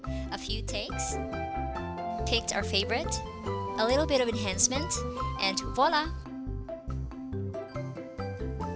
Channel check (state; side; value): identical; both; correlation 1.00